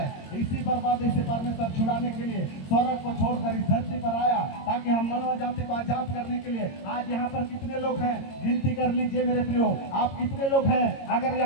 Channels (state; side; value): late; right; 22 ms